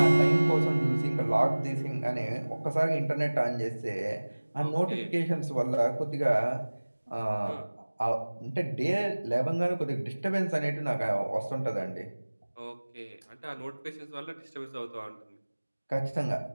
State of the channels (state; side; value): inverted; both; correlation -1.00